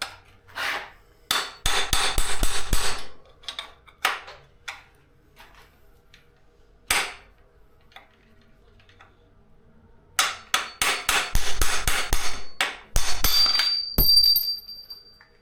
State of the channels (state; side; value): identical; both; correlation 1.00